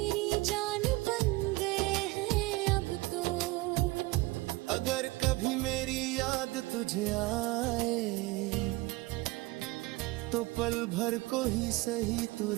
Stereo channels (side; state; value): left; quieter; 21.5 dB